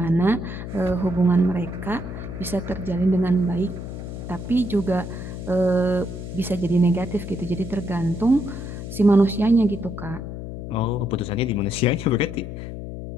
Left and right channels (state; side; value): noise; left; hum, 8 dB below the sound